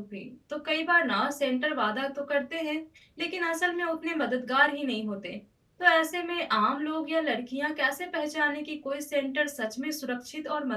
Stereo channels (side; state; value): both; identical; correlation 1.00